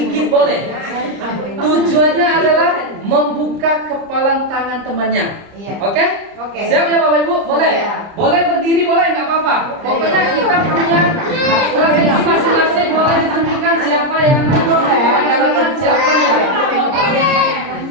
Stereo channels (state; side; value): late; left; 30 ms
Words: boleh. Tujuannya adalah membuka kepalan tangan temannya. Oke? Siap ya Bapak Ibu? Boleh? Boleh berdiri, boleh, nggak apa-apa. Pokoknya kita punya strategi masing-masing, boleh ditentukan siapa yang melakukan, siapa yang